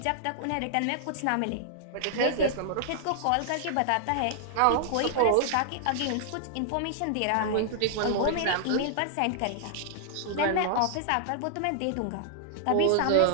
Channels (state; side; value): different; both; correlation -0.01